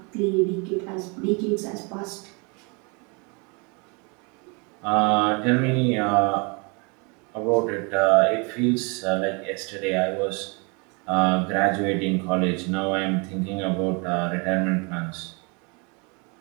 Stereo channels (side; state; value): left; quieter; 31.7 dB